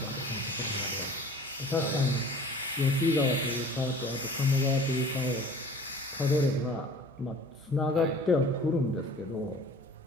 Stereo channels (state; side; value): normal; both; correlation 0.46